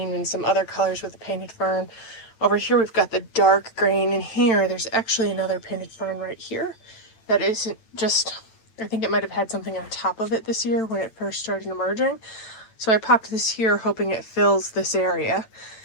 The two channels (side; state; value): right; late; 9.0 ms